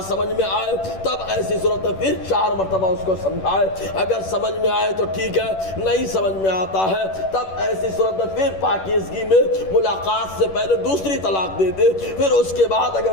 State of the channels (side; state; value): right; late; 11 ms